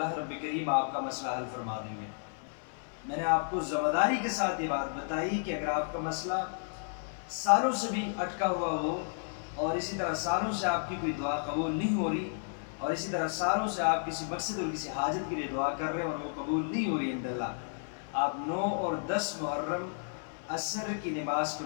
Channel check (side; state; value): right; silent; 56 dB below the other